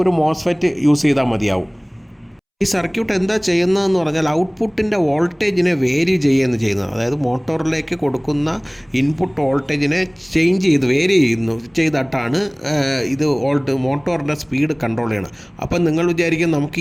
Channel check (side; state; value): both; identical; correlation 1.00